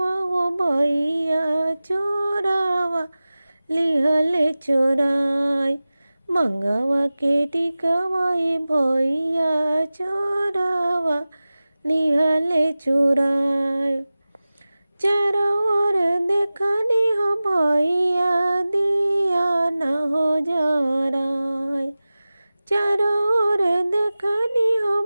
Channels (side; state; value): both; inverted; correlation -0.97